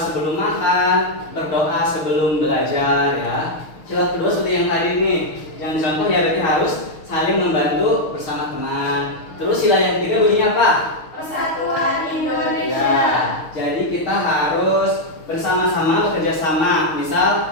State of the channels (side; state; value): right; late; 6.4 ms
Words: makan, berdoa sebelum belajar ya. Sila kedua seperti yang tadi nih, yang dicontoh ya berarti harus saling membantu bersama teman. Terus sila yang ketiga bunyinya apa? Persatuan Indonesia. Ya, jadi kita harus bersama-sama bekerja sama.